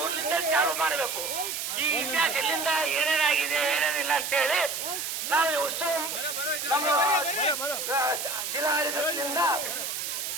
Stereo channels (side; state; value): right; noise; hiss, 4 dB below the sound